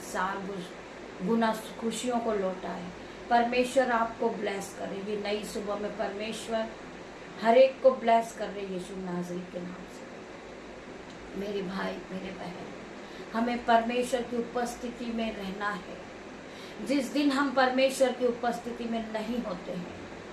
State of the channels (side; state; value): both; identical; correlation 1.00